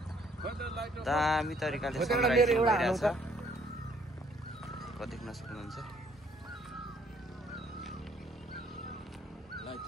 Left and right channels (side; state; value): both; normal; correlation 0.64